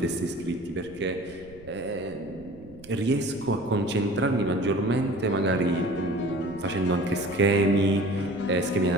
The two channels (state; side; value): noise; right; rumble, 22 dB below the sound